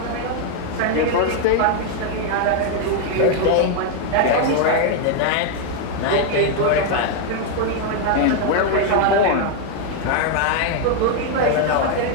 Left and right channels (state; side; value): different; both; correlation 0.00